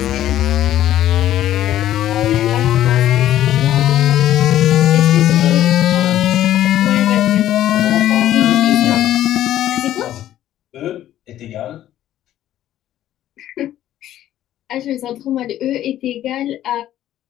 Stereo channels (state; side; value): quieter; right; 12.6 dB